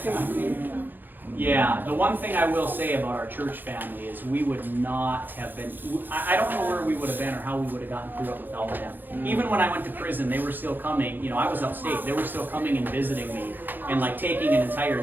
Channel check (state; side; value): late; left; 0.090 ms